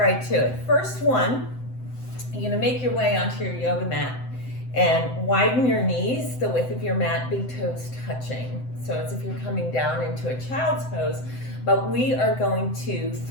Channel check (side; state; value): right; late; 7.8 ms